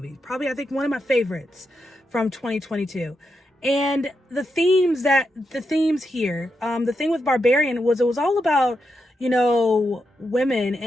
Probably, I think, one of my favorites from 2022. And the themes here, the thing with Barbarian was it was all about, women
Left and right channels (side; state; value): both; normal; correlation 0.85